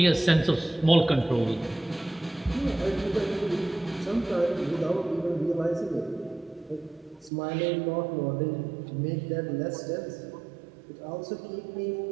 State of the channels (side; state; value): left; drops out; at 7.3 s